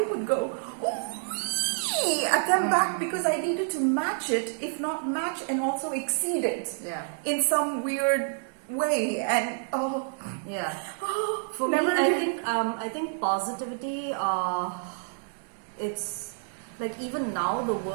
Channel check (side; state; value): left; silent; digital silence